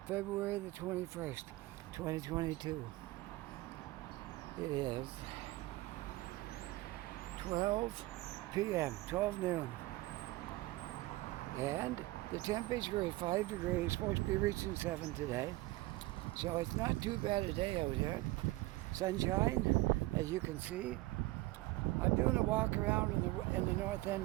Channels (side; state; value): left; quieter; 19.4 dB